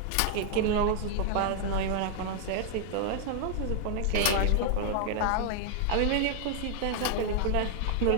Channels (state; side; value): different; both; correlation 0.00